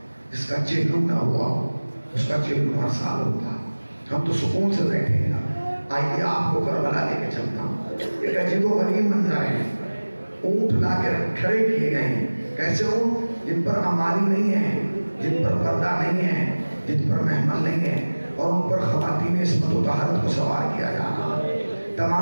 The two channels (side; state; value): both; inverted; correlation -1.00